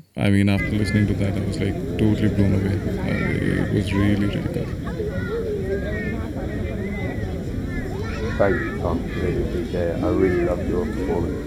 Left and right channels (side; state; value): both; identical; correlation 1.00